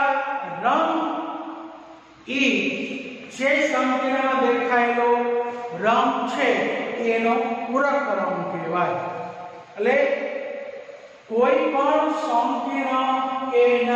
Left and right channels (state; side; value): identical; both; correlation 1.00